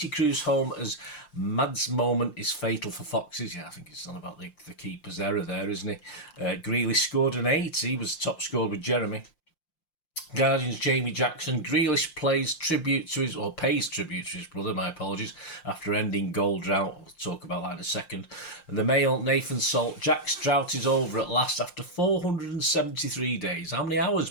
cruise home as Mad's moment is fatal for Foxes. Yeah, I think it's on about the keeper's error there, isn't he? Grealish scored an 8. He was top scorer with Jeremy. Guardian's Jamie Jackson. Grealish pays tribute to his brother, my apologies, after ending goal drought. We'll talk about that in a second. And the Mail, Nathan Salt. Jack's drought is over at last after 473 days. How many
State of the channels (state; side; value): late; right; 5.7 ms